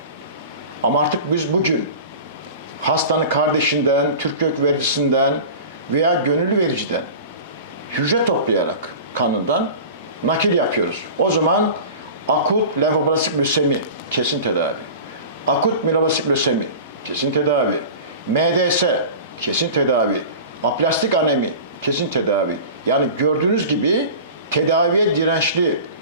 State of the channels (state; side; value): inverted; both; correlation -0.36